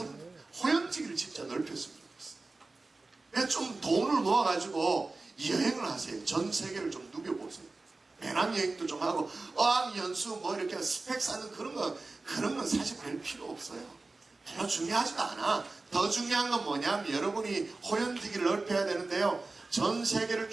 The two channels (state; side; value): quieter; left; 3.4 dB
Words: 호연지기를 진짜 넓혔으면 좋겠어요. 좀 돈을 모아가지고 여행을 하세요. 전 세계를 좀 누벼보세요. 배낭여행도 좀 하고 어학연수 뭐 이렇게 스펙 쌓는 그런 건 사실 별 필요 없어요. 별로 중요하지도 않아. 더 중요한 건 뭐냐면 여러분이 호연지기를 넓혀야 되는데요. 전 세계를